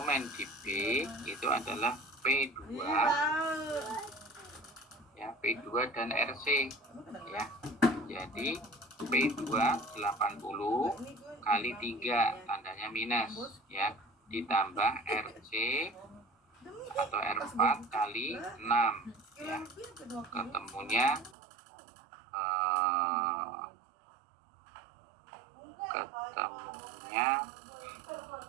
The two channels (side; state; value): left; drops out; at 21.4 s